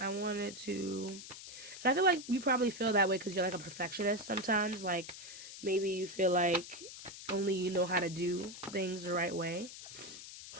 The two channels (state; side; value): noise; left; hiss, 13 dB below the sound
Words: wanted to, and I feel like you probably feel that way because you're like a perfectionist sometimes. Like maybe you feel like only you know how to do things the right way.